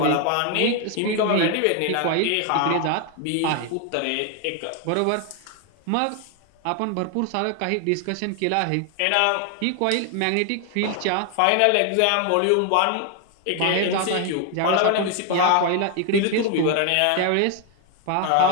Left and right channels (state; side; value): different; both; correlation 0.01